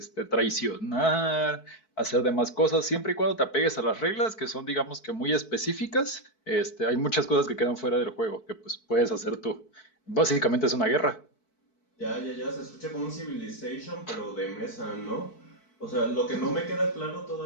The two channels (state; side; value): late; right; 4.6 ms